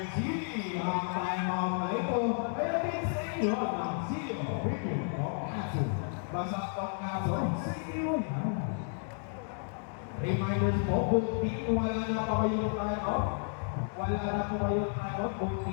ang timeout na ito. Kaya din sa inyo ng Silio Premium Tonkatsu. Basta Tonkatsu, sa inyo yan. Reminders po, both team, wala na pa kayo timeout. Wala na po kayo timeout, both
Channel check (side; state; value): right; silent; 56 dB below the other